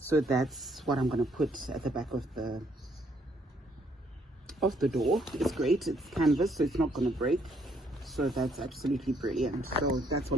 that's what I'm going to put at the back of the door. It's great, it's canvas, so it's not going to break. So that's absolutely brilliant. So that's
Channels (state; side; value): normal; both; correlation 0.69